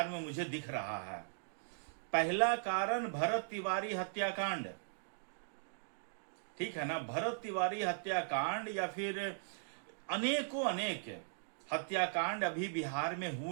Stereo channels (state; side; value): silent; left; digital silence